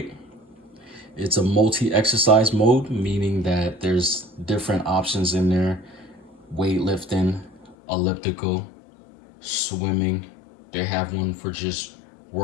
It's a multi-exercise mode, meaning that there's different options in there. Weightlifting, elliptical, swimming. They have one for just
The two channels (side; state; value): right; drops out; at 7.8 s